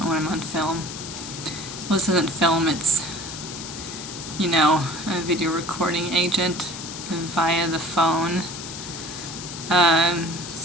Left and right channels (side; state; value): left; noise; hiss, 10 dB below the sound